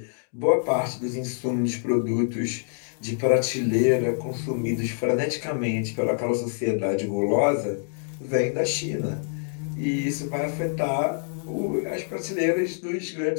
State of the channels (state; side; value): silent; right; digital silence